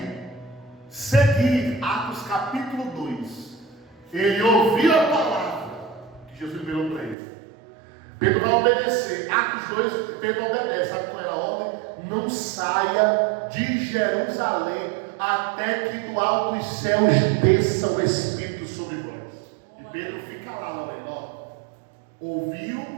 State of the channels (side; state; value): left; drops out; at 7.2 s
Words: seguir, Atos capítulo 2, ele ouviu a palavra que Jesus liberou para ele. Pedro vai obedecer. Atos 2, Pedro obedece. Sabe qual era a ordem? Não saia de Jerusalém até que do alto dos céus desça o Espírito sobre vós. E Pedro fica lá, Lorena, ouviu